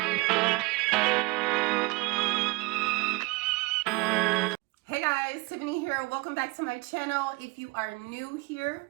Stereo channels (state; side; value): quieter; left; 25.4 dB